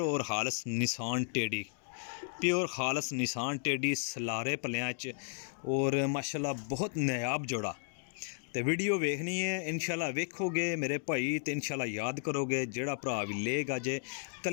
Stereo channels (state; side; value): silent; right; digital silence